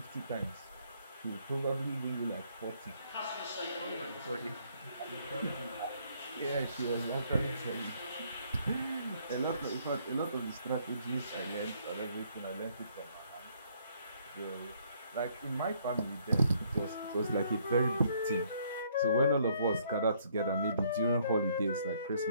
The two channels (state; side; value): inverted; both; correlation -0.66